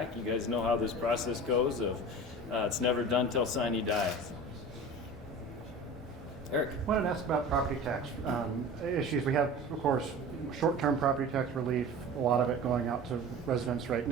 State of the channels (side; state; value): both; normal; correlation 0.36